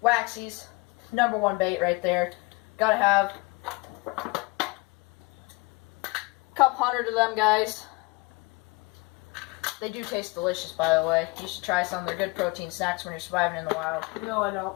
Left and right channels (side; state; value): right; quieter; 25.6 dB